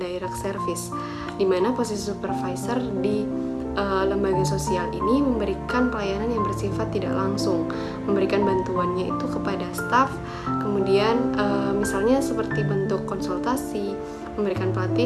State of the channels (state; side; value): identical; both; correlation 1.00